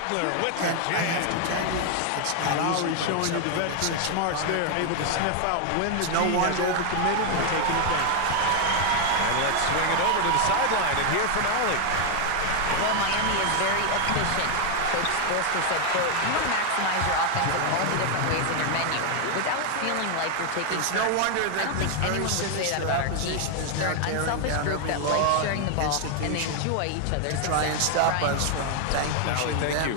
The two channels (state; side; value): different; both; correlation 0.00